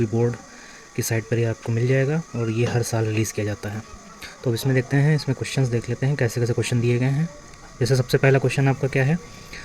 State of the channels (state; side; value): identical; both; correlation 1.00